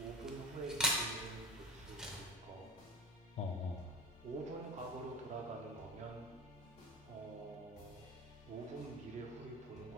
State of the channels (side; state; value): both; normal; correlation 0.32